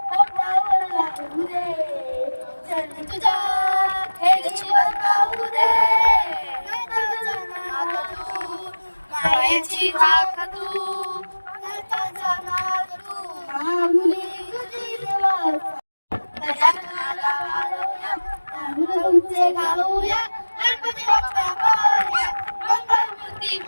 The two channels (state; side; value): inverted; both; correlation -1.00